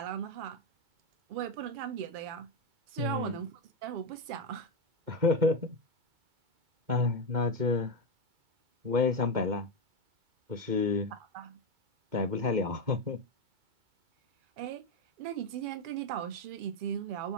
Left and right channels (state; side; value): late; left; 2.4 ms